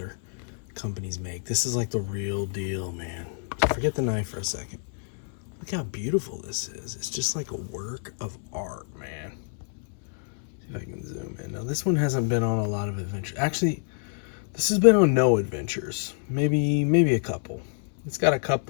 companies make. This is like the real deal, man. So forget the knife for a second. Look how beautiful this is. It's just like a work of art, man. See if I can zoom in. Now this one hasn't been on a lot of adventures. Actually, this has been on no adventures. Maybe a couple. It's got a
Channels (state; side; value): silent; right; 60 dB below the other